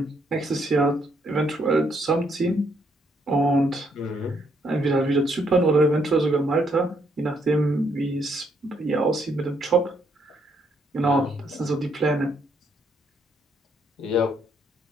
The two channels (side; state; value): both; normal; correlation 0.72